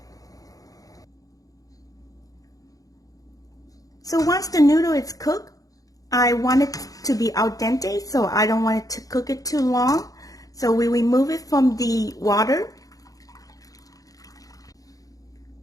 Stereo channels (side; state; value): right; late; 0.17 ms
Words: So once the noodle is cooked, I want it to be al dente, so I don't want it to cook it too long. So we remove it from the water.